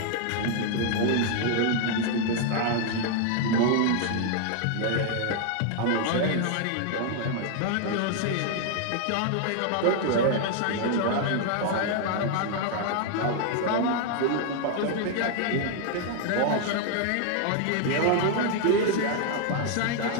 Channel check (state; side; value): different; both; correlation 0.00